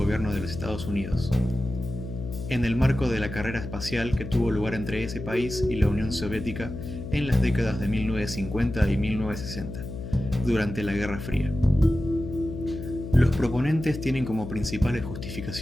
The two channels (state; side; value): noise; left; hum, 8 dB below the sound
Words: de los Estados Unidos, en el marco de la carrera espacial que tuvo lugar entre ese país y la Unión Soviética en las décadas de 1950 y 1960, durante la Guerra Fría. Los proponentes tienen como principales